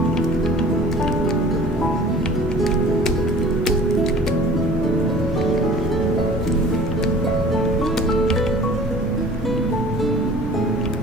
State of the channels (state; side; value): normal; both; correlation 0.46